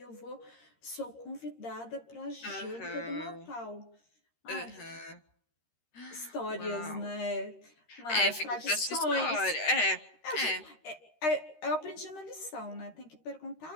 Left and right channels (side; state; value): right; late; 13 ms